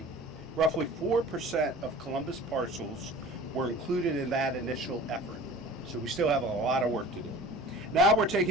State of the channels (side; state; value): both; normal; correlation 0.41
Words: Roughly 4% of Columbus parcels were included in that initial effort, so we still have a lot of work to do. Now we're